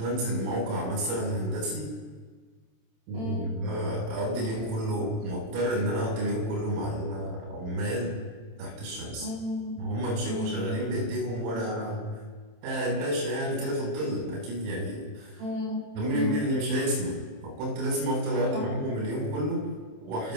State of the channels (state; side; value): late; left; 27 ms